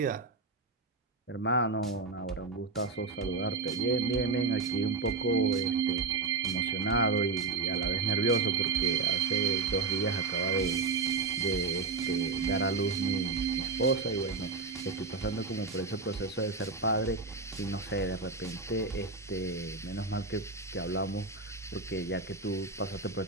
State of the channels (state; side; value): quieter; left; 4.1 dB